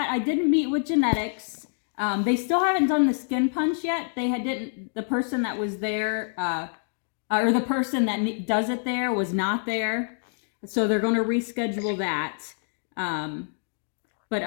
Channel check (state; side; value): silent; right; digital silence